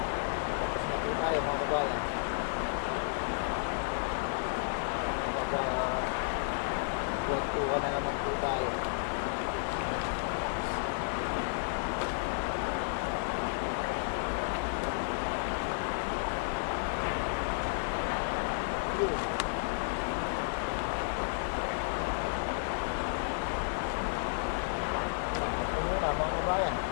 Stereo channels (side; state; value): right; silent; 56 dB below the other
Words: Tapos na po tayo mga kabayan. Magkwentuhan na naman po tayo.